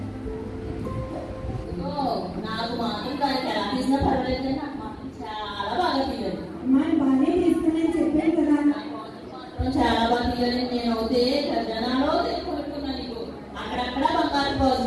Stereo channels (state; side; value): identical; both; correlation 1.00